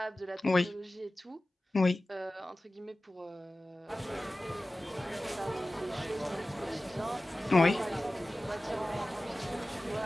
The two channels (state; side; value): normal; both; correlation 0.96